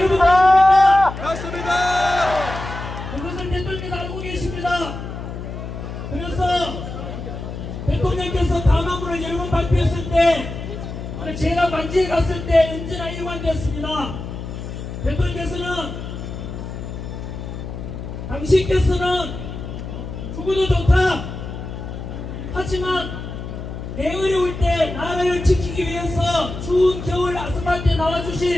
맞습니다. 그것을 대통령께서 알고 계십니다. 그래서 대통령께서 담화문을 여러 번 발표했을 때 제가 관지에 갔을 때 언제나 일관됐습니다. 대통령께서는 당신께서는 죽어도 좋다. 하지만 내 어려울 때 나라를 지키기 위해서 추운 겨울 아스팔트에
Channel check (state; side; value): noise; left; hum, 8 dB below the sound